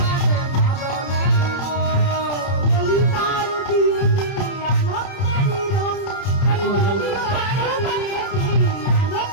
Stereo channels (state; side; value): late; right; 30 ms